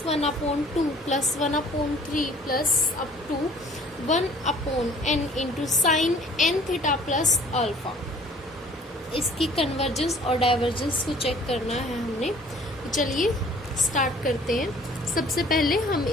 1 upon 2 plus 1 upon 3 plus up to 1 upon n into sin n theta plus alpha. इसकी कन्वर्जेंस और डाइवर्जेंस को चेक करना है हमने। तो चलिए स्टार्ट करते हैं। सबसे पहले हम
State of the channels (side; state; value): both; normal; correlation 0.53